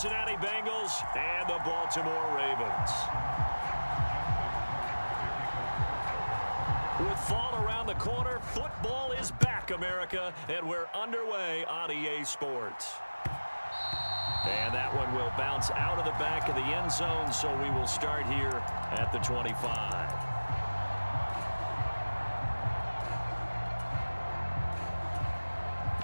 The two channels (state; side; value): inverted; both; correlation -1.00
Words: Bengals and the Baltimore Ravens. With fall around the corner, football is back, America, and we're underway on EA Sports. And that one will bounce out of the back of the end zone, so we will start here at the 25.